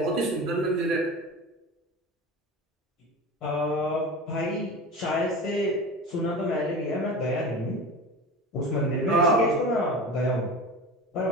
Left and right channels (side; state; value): both; normal; correlation 0.31